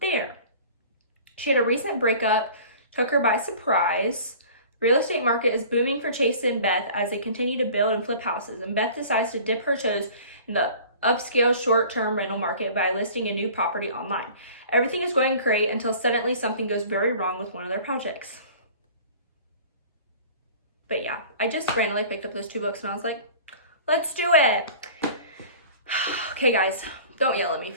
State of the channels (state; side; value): inverted; both; correlation -0.44